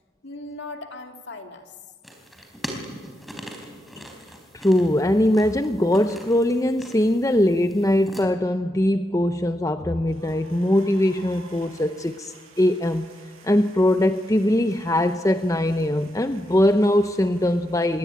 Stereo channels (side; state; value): both; normal; correlation 0.85